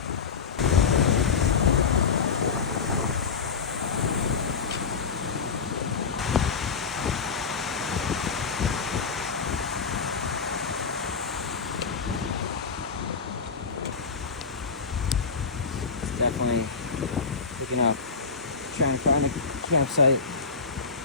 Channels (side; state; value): right; quieter; 5.3 dB